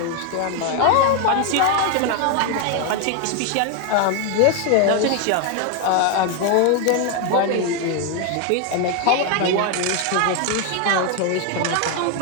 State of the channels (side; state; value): both; different; correlation 0.01